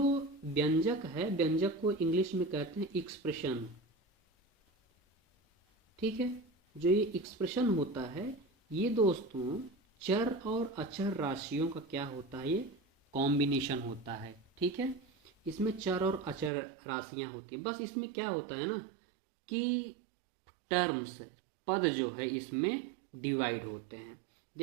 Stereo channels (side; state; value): left; drops out; at 16.5 s